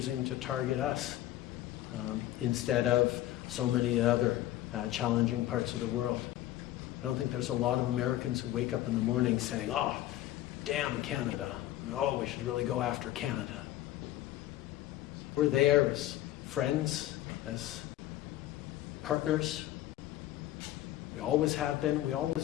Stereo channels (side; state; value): right; quieter; 14.3 dB